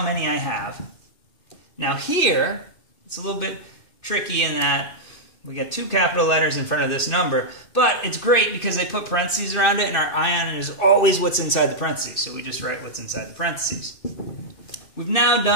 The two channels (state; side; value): late; right; 2.5 ms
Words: many I have. Now here, it's a little bit tricky in that we get 2 capital letters in front of this number, but it's great because they put parentheses around it, and our ion is always what's inside the parentheses, so we just write what's inside the parentheses. We've now